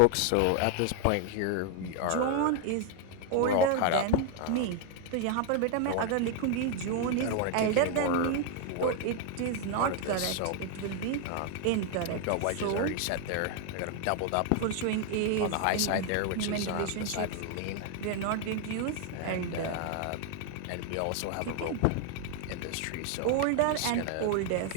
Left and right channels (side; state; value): both; different; correlation 0.00